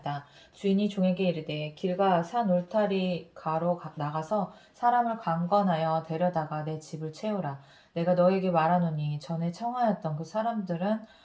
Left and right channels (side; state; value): both; identical; correlation 1.00